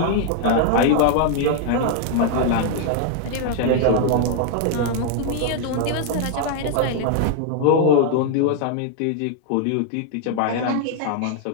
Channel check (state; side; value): different; both; correlation 0.00